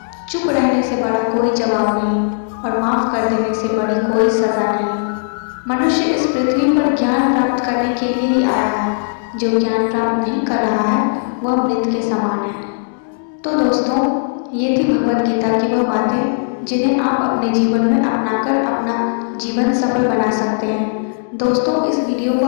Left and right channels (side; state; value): right; silent; digital silence